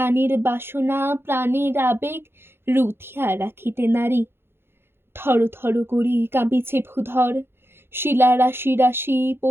বাসনা প্রাণের আবেগ রুথিয়া রাখিতে নারী। থর থর করি কাঁপিছে ভূধর, শিলা রাশি রাশি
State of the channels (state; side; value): late; left; 0.11 ms